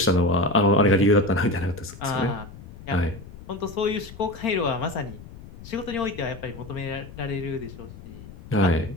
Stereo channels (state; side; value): noise; left; rumble, 16 dB below the sound